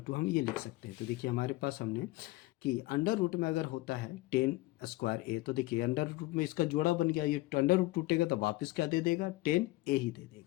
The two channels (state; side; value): quieter; right; 19.9 dB